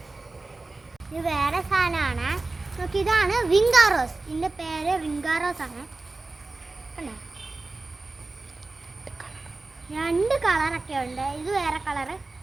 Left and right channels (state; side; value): quieter; left; 3.3 dB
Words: ഇത് വേറെ സാധനമാണ്. നോക്കി, ഇതാണ് വിങ്കാറോസ്. ഇതിൻ്റെ പേര് വിങ്കാറോസ് ആണ്. കണ്ടോ? രണ്ട് കളറൊക്കെ ഉണ്ട്. ഇത് വേറെ കളറ്,